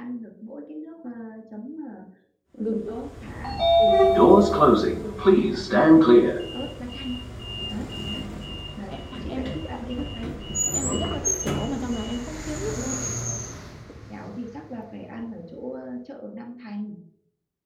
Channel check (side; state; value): both; identical; correlation 1.00